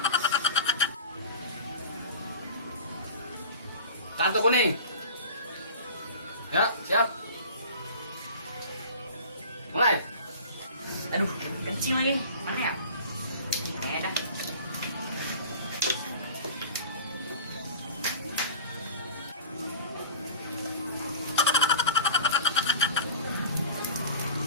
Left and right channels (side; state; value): both; inverted; correlation -0.39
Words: Kartu kuning. Ya, siap. Mulai. Aduh, kencing lagi. Mana ya? Dah.